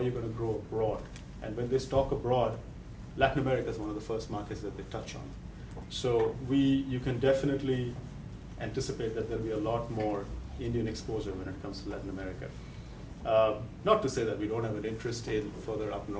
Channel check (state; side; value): identical; both; correlation 1.00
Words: you going to grow abroad. And when they talk abroad, Latin America is one of the first markets that they touch on. So you can definitely anticipate that there'll be a lot more Indian exposure when it comes to Latin America. Not to say that we don't have an interest in further up